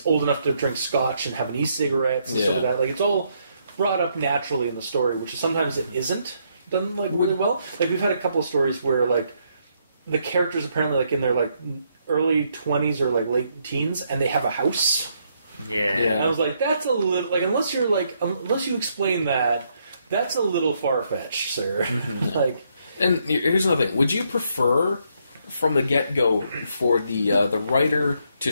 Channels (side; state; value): both; inverted; correlation -0.74